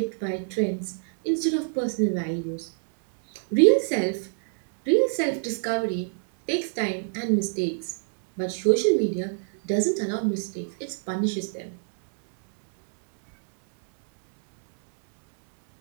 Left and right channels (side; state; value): left; silent; digital silence